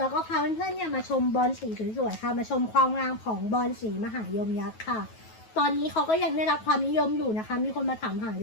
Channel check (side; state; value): right; late; 9.3 ms